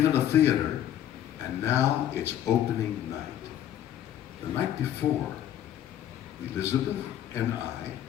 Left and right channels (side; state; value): right; quieter; 11.1 dB